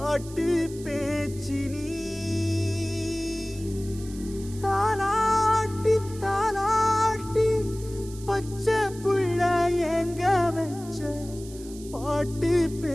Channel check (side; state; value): right; noise; hiss, 18 dB below the sound